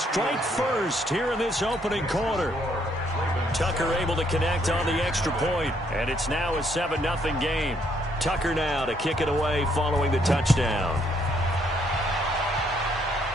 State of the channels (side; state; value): both; normal; correlation 0.70